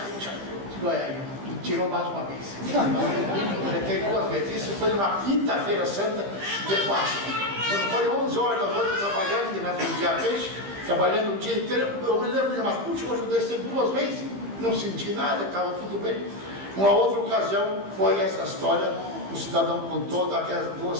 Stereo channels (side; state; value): left; late; 15 ms